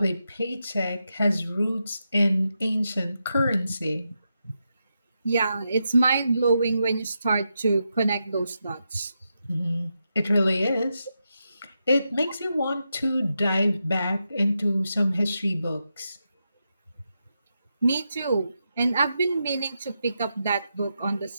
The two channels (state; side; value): inverted; both; correlation -0.86